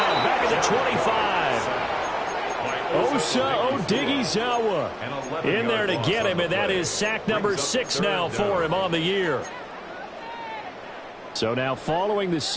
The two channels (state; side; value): identical; both; correlation 1.00